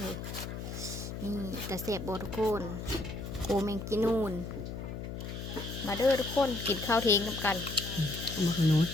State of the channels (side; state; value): left; noise; hum, 7 dB below the sound